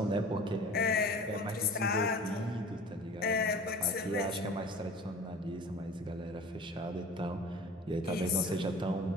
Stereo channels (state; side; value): normal; both; correlation 0.42